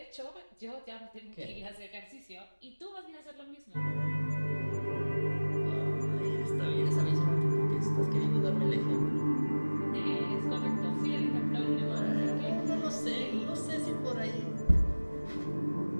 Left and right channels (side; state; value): both; inverted; correlation -1.00